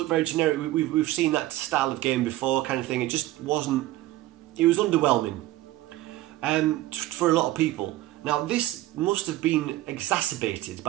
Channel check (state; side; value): quieter; left; 16.0 dB